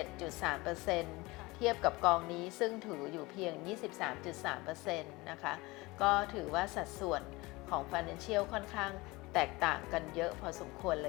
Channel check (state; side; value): quieter; right; 22.5 dB